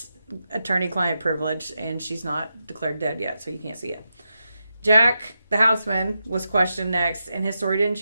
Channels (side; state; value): both; inverted; correlation -0.87